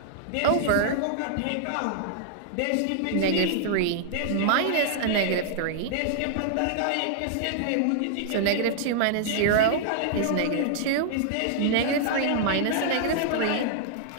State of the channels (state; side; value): different; both; correlation -0.01